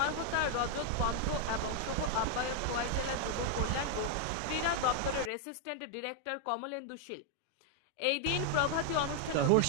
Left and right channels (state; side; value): different; both; correlation 0.00